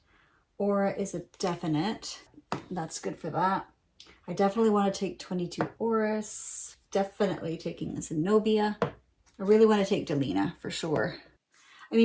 Aura is a definite. That's good for that. I definitely want to take 22 Orris. Definitely taking Zenobia. I really want to take Delina for sure. I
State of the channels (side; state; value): both; identical; correlation 1.00